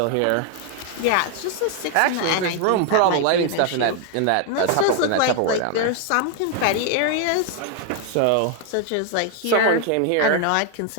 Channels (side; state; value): both; different; correlation 0.00